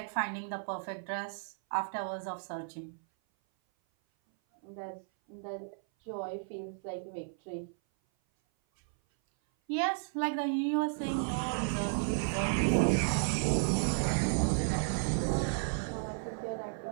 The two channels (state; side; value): silent; left; 55 dB below the other